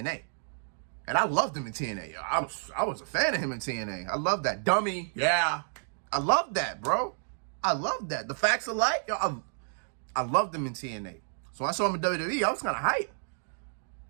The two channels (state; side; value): silent; left; digital silence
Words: And I loved him in TNA. I was a fan of him in TNA. I love that. Dummy. Yeah. I love that, bro. I love that. The Facts of Life. I loved him in TNA. So when I saw him in WWE, I was kind of hype.